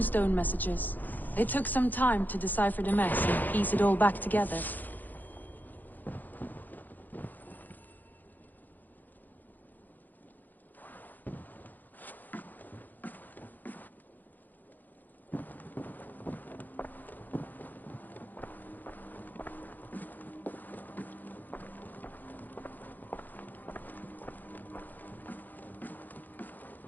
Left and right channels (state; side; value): late; right; 0.085 ms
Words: messages. It took some time to decipher the mess and piece it all back together.